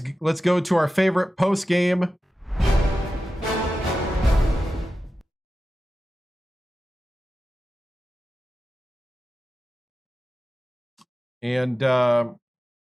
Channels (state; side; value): normal; both; correlation 0.93